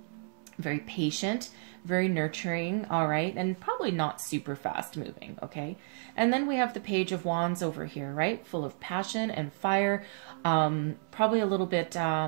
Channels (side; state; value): left; silent; 57 dB below the other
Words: patient, very nurturing. All right. And probably not super fast moving. Okay. And then we have the Page of Wands over here, right? Full of passion and fire. Probably a little bit